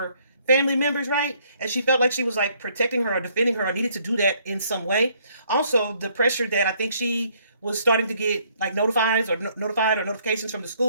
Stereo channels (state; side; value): inverted; both; correlation -0.66